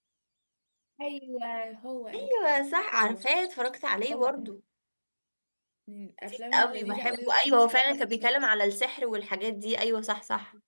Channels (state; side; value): inverted; both; correlation -1.00